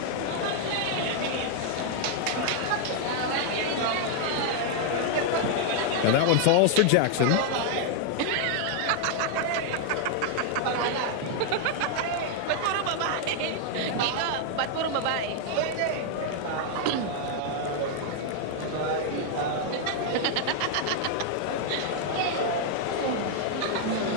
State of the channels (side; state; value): both; different; correlation 0.00